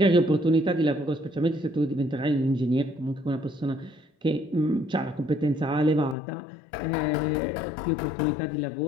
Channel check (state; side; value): drops out; right; at 6.2 s